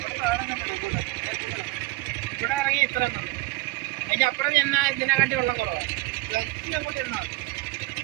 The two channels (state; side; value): quieter; left; 20.3 dB